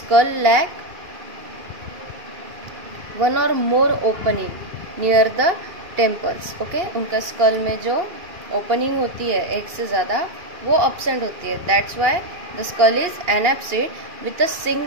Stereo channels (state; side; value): late; left; 2.8 ms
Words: lack one or more opening near the temples. Okay, उनका स्कल में जो ओपनिंग होती है एक से ज़्यादा वो absent होती है. That's why the skull is anapsid with a